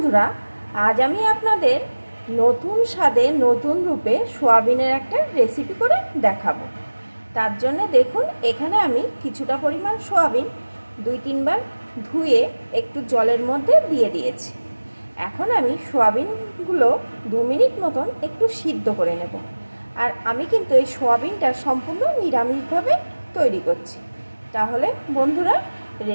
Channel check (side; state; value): both; inverted; correlation -1.00